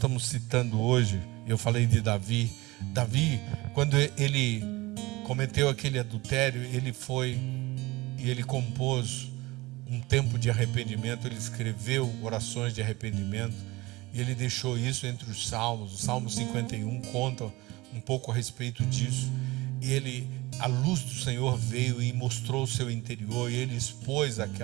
citando hoje, eu falei de Davi, quando ele cometeu aquele adultério, ele foi e ele compôs um tempo de arrependimento, ele escreveu orações de arrependimento, e ele deixou isso entre os salmos. O Salmo 51 conta um pouco a respeito disso. A luz do Senhor veio e mostrou o seu interior, e ele expôs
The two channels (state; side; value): quieter; left; 21.3 dB